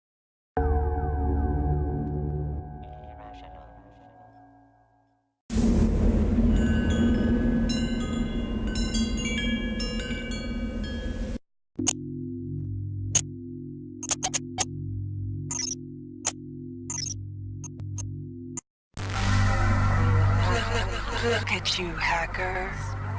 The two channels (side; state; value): both; identical; correlation 1.00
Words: at you, hacker.